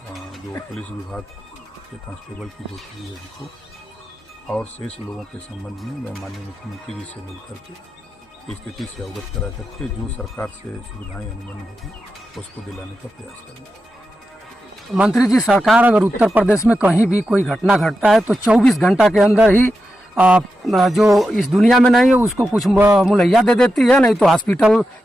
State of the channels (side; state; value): both; normal; correlation 0.89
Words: जो पुलिस विभाग के कांस्टेबल की जो चीज़ है उनको, और शेष लोगों के संबंध में मैं माननीय मुख्यमंत्री जी से मिलकर के स्थिति से अवगत करा करके जो सरकार से सुविधाएं अनुमति होगी उसको दिलाने का प्रयास करेंगे। मंत्री जी, सरकार अगर उत्तर प्रदेश में कहीं भी कोई घटना घटता है तो 24 घंटा के अंदर ही जो इस दुनिया में नहीं है उसको कुछ मुहैया दे देती है, नहीं तो